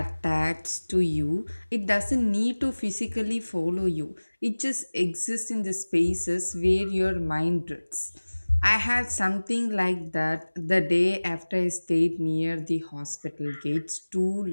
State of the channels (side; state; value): both; inverted; correlation -1.00